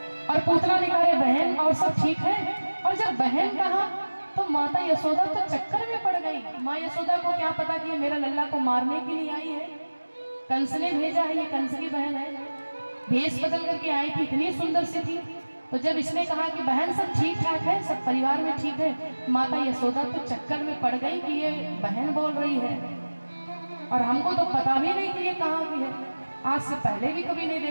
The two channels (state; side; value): inverted; both; correlation -1.00